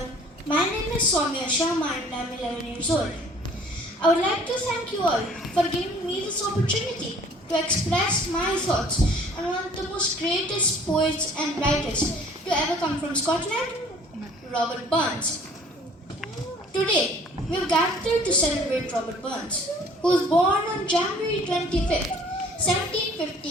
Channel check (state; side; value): normal; both; correlation 0.53